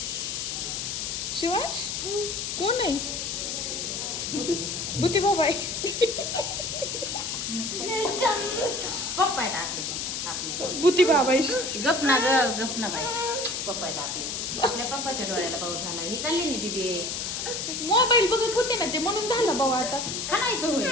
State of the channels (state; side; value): noise; left; hiss, 3 dB below the sound